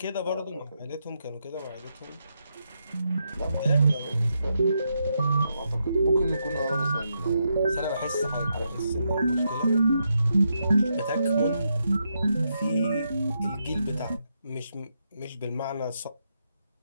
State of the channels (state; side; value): inverted; both; correlation -0.81